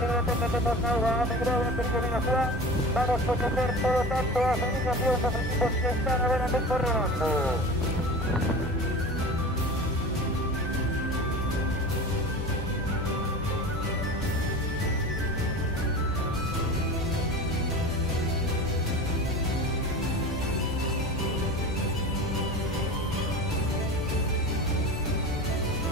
tenda que hemos dado a Megrove en peregrinación. Vamos a coger todo tanto a felicitación a los equipos que están ahora en el corredor.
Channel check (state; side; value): noise; left; rumble, 11 dB below the sound